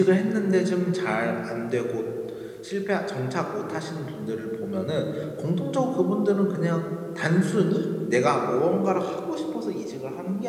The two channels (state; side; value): identical; both; correlation 1.00